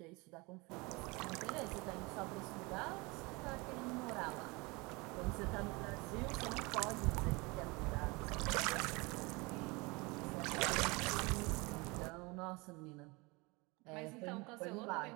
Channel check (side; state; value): left; quieter; 25.9 dB